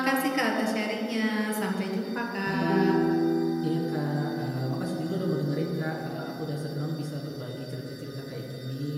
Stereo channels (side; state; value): both; identical; correlation 1.00